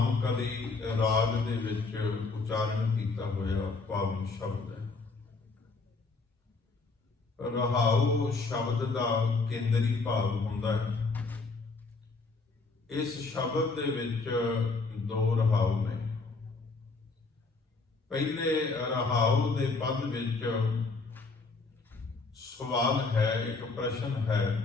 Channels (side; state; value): right; quieter; 3.9 dB